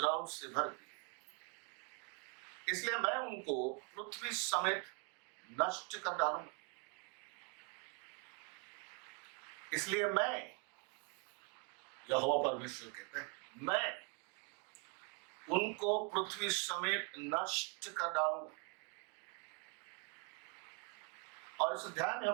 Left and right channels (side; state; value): left; quieter; 33.4 dB